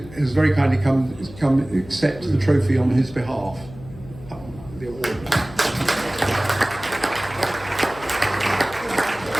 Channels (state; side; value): noise; left; hum, 17 dB below the sound